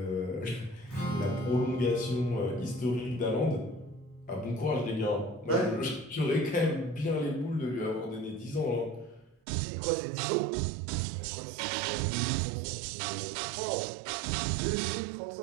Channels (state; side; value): drops out; left; at 9.4 s